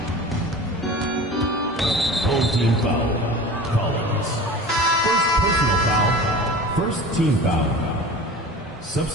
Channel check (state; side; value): normal; both; correlation 0.37